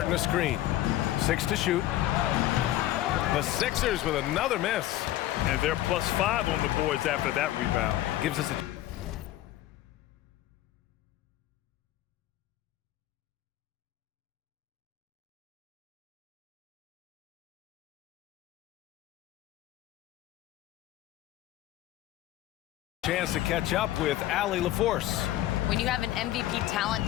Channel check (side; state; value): right; quieter; 14.4 dB